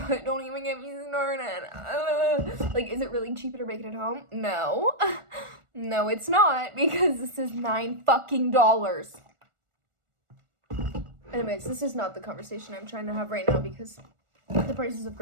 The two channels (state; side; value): late; left; 1.4 ms